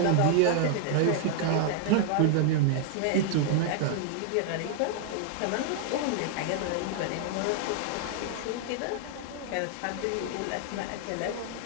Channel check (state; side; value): different; both; correlation 0.00